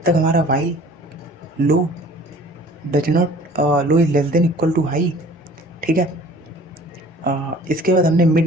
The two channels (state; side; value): normal; both; correlation 0.49